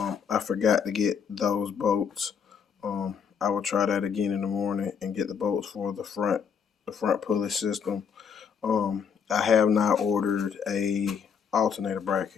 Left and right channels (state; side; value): quieter; right; 6.8 dB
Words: forgot to get those bolts. I will try that again in the morning and get the bolts for the front pulley system. I have not ordered a alternator